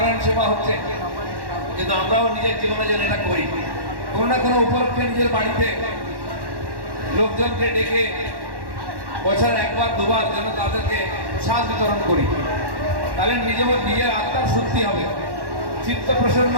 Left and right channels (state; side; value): late; left; 1.1 ms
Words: সেবা হচ্ছে, কিন্তু আমরাও নিজের জীবনে যেন এটা করি। কোনো না কোনো উপলক্ষে নিজের বাড়িতে লোকজনকে ডেকে বছর একবার দুবার যেন তাদেরকে প্রসাদ বিতরণ করি। তাহলে নিজের আত্মার শুদ্ধি হবে, চিত্ত প্রসন্ন